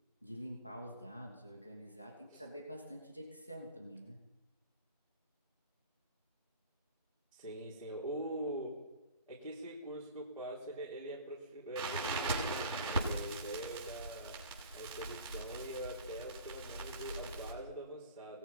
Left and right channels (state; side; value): inverted; both; correlation -0.41